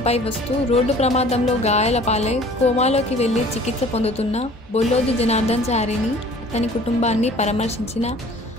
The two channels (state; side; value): normal; both; correlation 0.50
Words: వస్తూ రోడ్డు ప్రమాదంలో గాయాల పాలై కోమాలోకి వెళ్లి చికిత్స పొందుతున్న బొల్లోజు జనార్దన్ చారిని, అతని కుటుంబాన్ని పరామర్శించిన